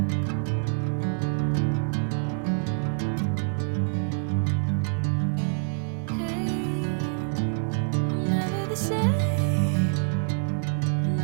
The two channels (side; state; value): left; silent; digital silence